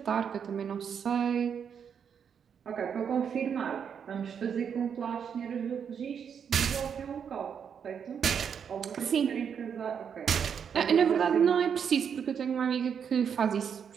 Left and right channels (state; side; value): quieter; left; 7.4 dB